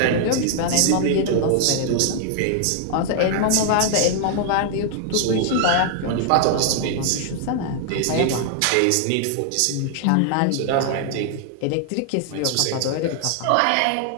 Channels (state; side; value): different; both; correlation 0.00